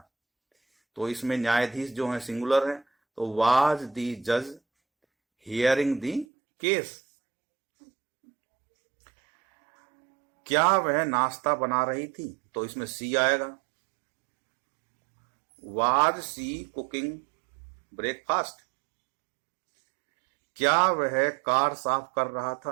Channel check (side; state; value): left; drops out; at 6.2 s